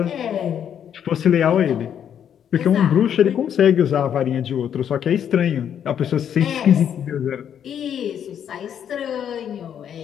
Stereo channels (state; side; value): quieter; right; 9.0 dB